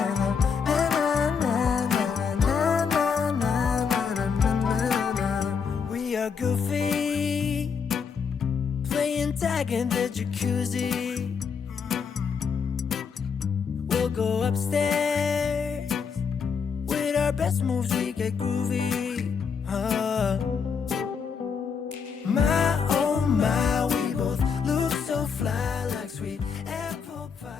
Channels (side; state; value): right; quieter; 6.2 dB